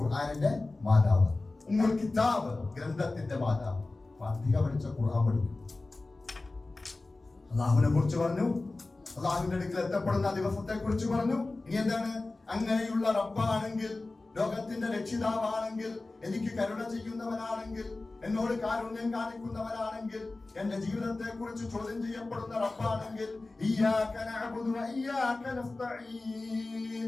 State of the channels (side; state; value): right; quieter; 3.2 dB